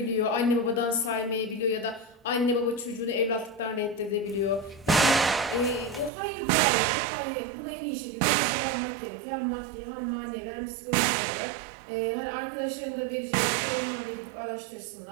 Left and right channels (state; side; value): drops out; left; at 6.1 s